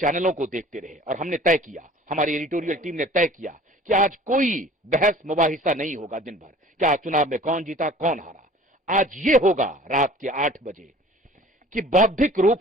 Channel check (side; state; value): both; normal; correlation 0.47